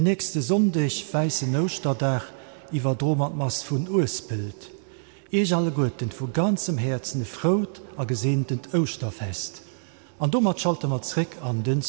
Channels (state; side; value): silent; left; digital silence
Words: nächste Sonntag weißen Osterdach iwwer Dromatmas vun Ursbild. Ich alle Guten vu ganzem Herzen frot a gesehnten Osterfest. An dummer schalte mat zrick an den